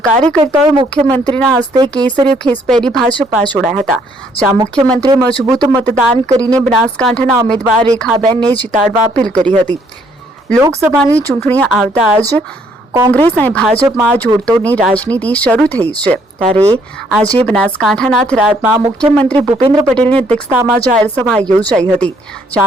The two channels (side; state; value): both; normal; correlation 0.67